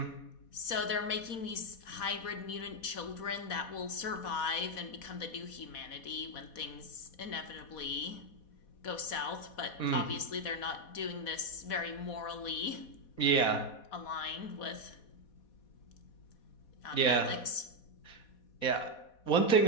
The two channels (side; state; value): right; late; 4.1 ms